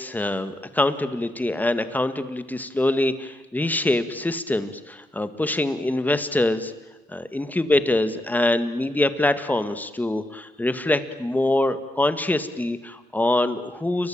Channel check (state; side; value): normal; both; correlation 0.83